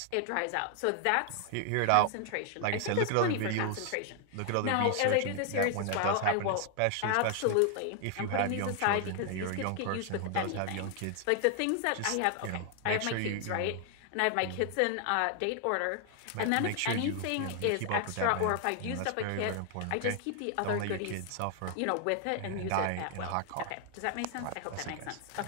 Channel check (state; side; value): different; both; correlation 0.00